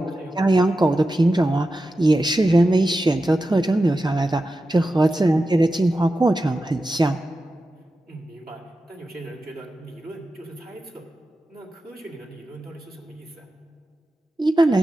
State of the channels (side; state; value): both; normal; correlation 0.92